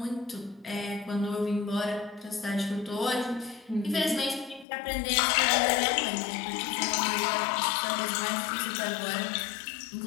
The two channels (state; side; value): drops out; right; at 4.7 s